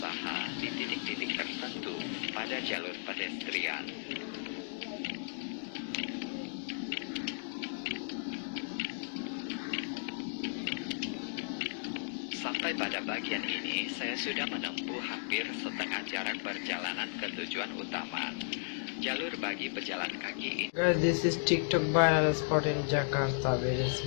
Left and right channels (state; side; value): silent; right; digital silence